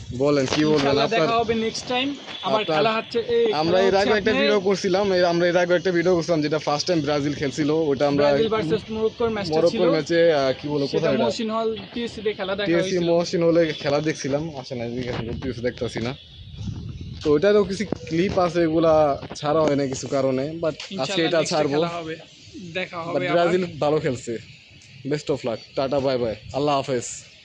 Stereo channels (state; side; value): identical; both; correlation 1.00